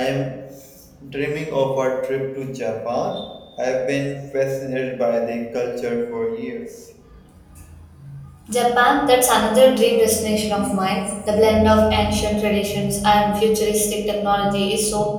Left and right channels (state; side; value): identical; both; correlation 1.00